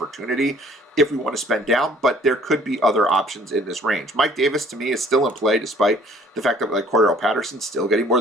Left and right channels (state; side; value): normal; both; correlation 0.56